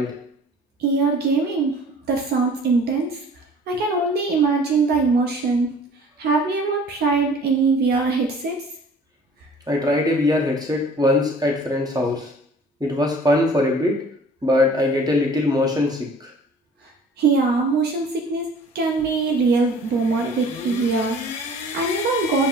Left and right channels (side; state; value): both; normal; correlation 0.49